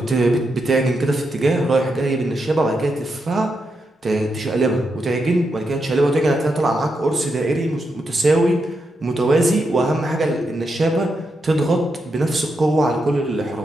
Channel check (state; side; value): normal; both; correlation 0.84